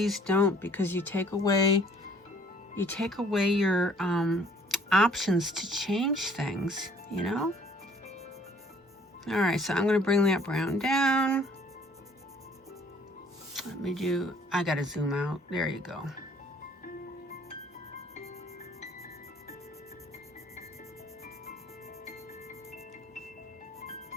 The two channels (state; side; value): normal; both; correlation 0.58